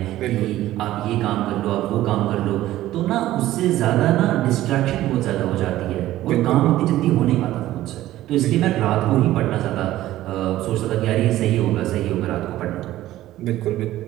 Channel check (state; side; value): quieter; left; 14.8 dB